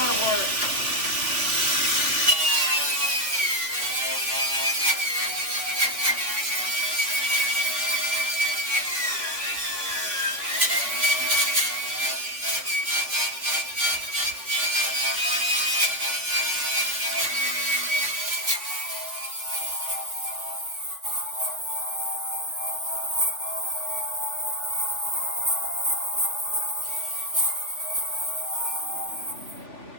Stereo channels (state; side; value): late; left; 3.3 ms